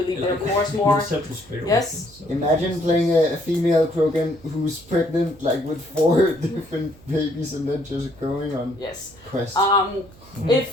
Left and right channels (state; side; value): noise; right; hum, 24 dB below the sound